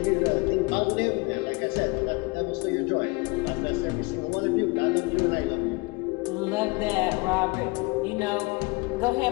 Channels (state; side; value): quieter; right; 26.8 dB